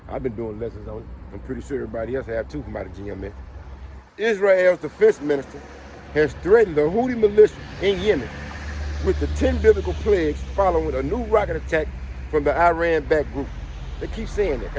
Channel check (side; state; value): both; identical; correlation 1.00